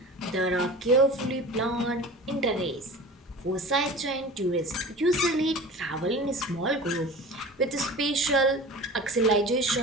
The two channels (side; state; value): both; normal; correlation 0.37